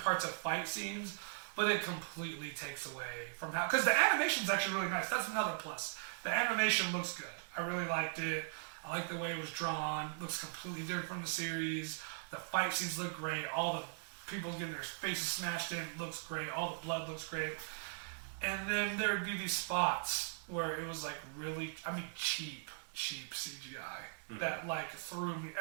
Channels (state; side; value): silent; left; digital silence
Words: of fight scenes, but it completely takes away from how, because the animation's actually really nice. That's another plus. The animation looks good. I really liked it. I like the way it was drawn. Looks completely different from the series. The fight scenes look great. All the people getting their faces smashed in looks great. All the blood looks great. And then there would be these spots where it was like really, cheap CGI that like threw me.